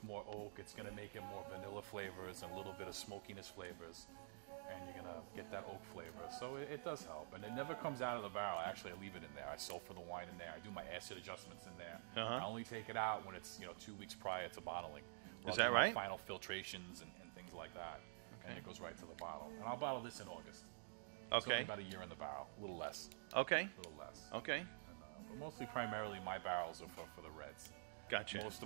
more oak. It's going to make it more vanilla flavors and a little bit of smokiness flavors, and you're going to get that oak flavor. So it does help, and it never comes out of the barrel. Actually, I leave it in there. I sulfur the wine in there. I do my acid adjustments in there. I only take it out when it's 2 weeks prior to bottling. Is that right? Final filtrations and things like that. And it goes right to the bottle. And I'll bottle this in August. It's only about a year in the barrel, a little less. Okay. A little less. Okay. And, but mostly, primarily, my barrels are for the reds. Gotcha. Most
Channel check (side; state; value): left; silent; digital silence